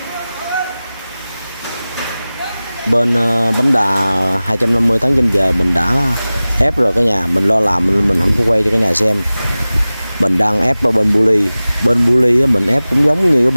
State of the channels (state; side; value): inverted; both; correlation -0.98